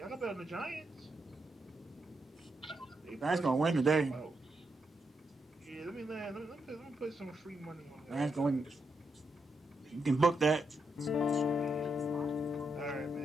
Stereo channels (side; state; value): both; normal; correlation 0.82